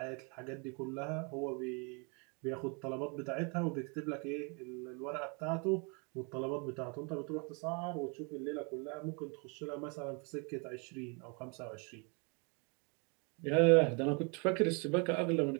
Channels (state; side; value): quieter; left; 34.1 dB